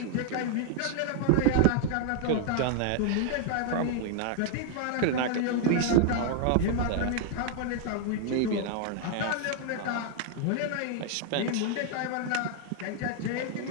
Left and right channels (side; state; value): both; different; correlation 0.00